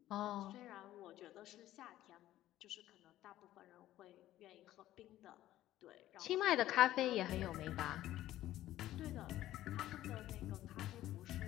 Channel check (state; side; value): quieter; right; 14.1 dB